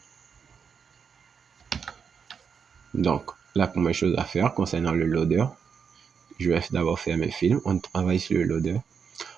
Donc, la première chose à faire concernant le loader, je vais d'abord faire mes films. On travaille sur le loader.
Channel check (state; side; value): quieter; left; 6.5 dB